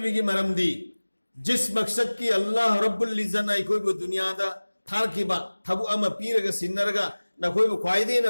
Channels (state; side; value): inverted; both; correlation -1.00